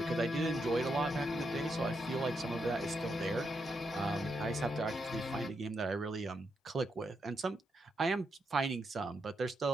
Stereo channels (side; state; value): both; normal; correlation 0.82